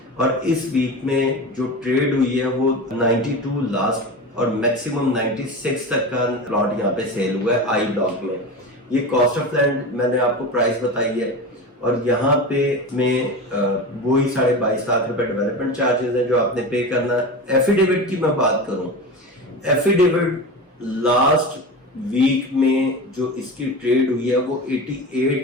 और इस वीक में जो ट्रेड हुई है वो 92 लास्ट और मैक्सिमम 96 तक का प्लॉट यहाँ पे सेल हुआ है आई ब्लॉक में। ये कॉस्ट ऑफ लैंड मैंने आपको प्राइस बताई है और यहाँ पे में वही 22.5 लाख रुपए डेवलपमेंट चार्जेस है जो आपने पे करना। एफिडेविट की मैं बात करूं, एफिडेविट लास्ट वीक में जो इसकी ट्रेड हुई है वो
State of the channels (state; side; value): normal; both; correlation 0.27